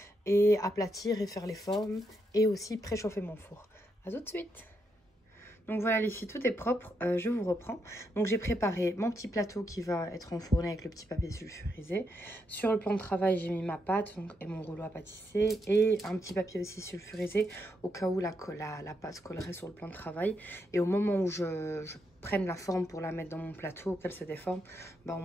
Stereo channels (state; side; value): normal; both; correlation 0.81